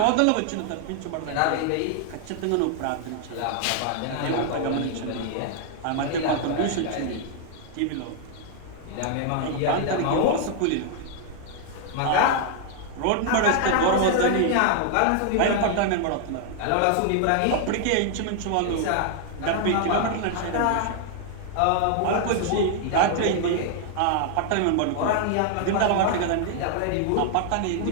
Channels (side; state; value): both; different; correlation 0.00